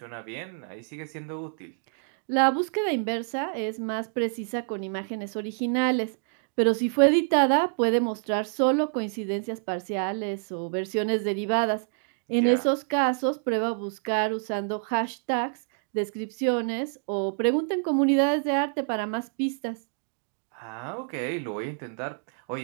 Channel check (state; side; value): silent; left; digital silence